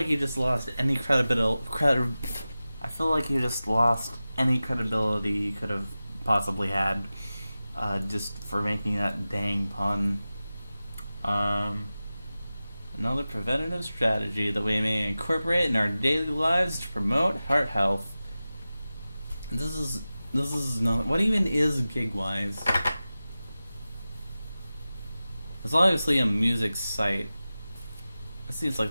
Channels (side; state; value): both; inverted; correlation -0.95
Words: you just lost any credibility you could have possibly had, just for making that dang pun. Another preventative strategy that we may incorporate in our daily lives to promote heart health. This is not. What even is Gigwise? It's obviously a music site. It seems